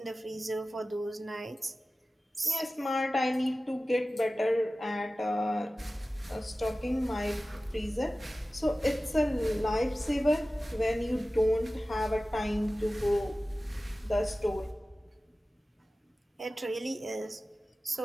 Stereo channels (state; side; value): normal; both; correlation 0.96